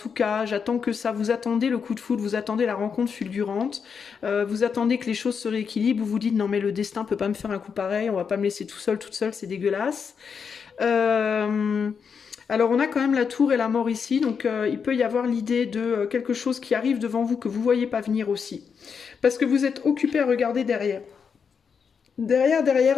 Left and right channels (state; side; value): quieter; right; 6.3 dB